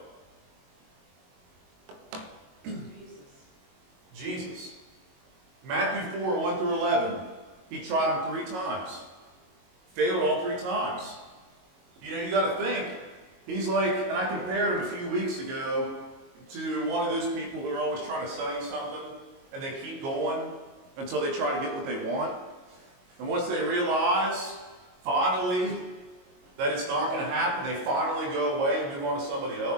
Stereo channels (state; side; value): late; left; 22 ms